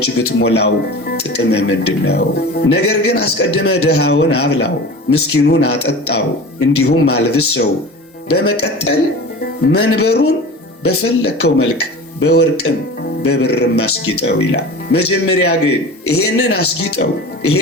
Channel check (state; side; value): normal; both; correlation 0.35